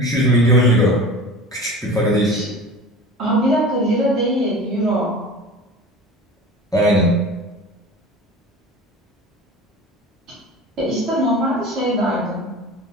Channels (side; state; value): both; normal; correlation 0.37